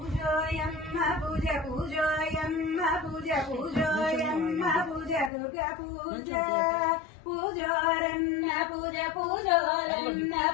పూజ పూజోయమ్మ పూజ పూజోయమ్మ పూజ దుర్గా పూజ పూజోరన్న పూజ పూజోరన్న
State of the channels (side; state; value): right; drops out; at 5.3 s